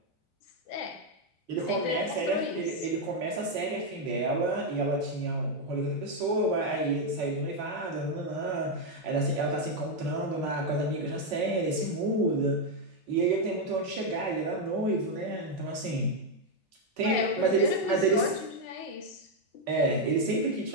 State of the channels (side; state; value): right; late; 4.5 ms